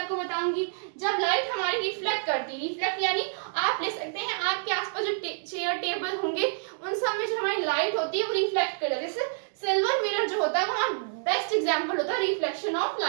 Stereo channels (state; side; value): silent; left; digital silence